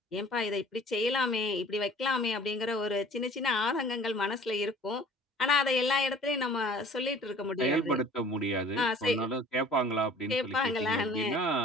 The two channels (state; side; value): normal; both; correlation 0.49